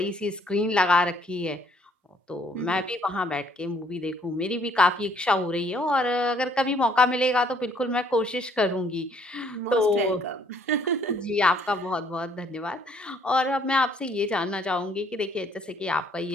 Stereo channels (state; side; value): normal; both; correlation 0.63